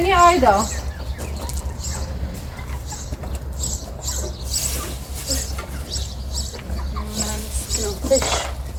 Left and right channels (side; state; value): both; identical; correlation 1.00